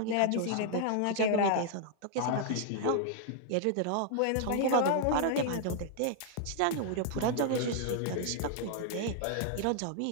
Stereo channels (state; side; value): different; both; correlation -0.01